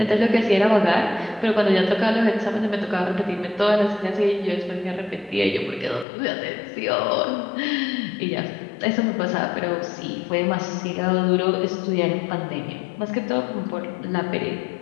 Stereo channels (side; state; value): right; drops out; at 6.1 s